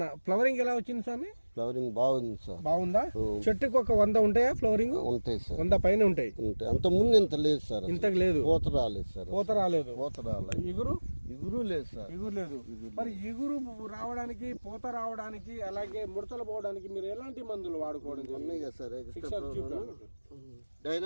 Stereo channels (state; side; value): inverted; both; correlation -1.00